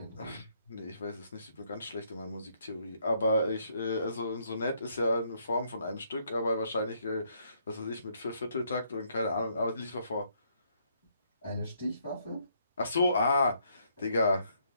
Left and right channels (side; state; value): both; inverted; correlation -0.71